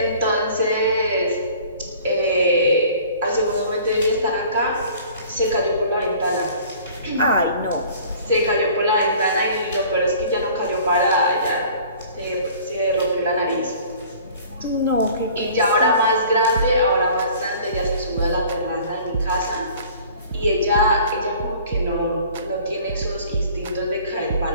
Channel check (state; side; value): inverted; both; correlation -0.49